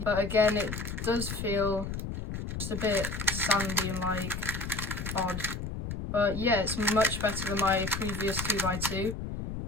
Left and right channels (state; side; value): noise; left; rumble, 5 dB below the sound